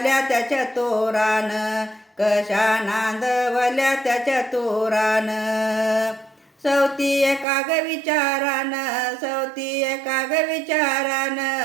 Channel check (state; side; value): drops out; left; at 7.5 s